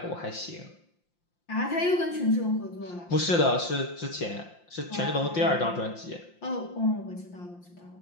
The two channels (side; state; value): right; late; 5.8 ms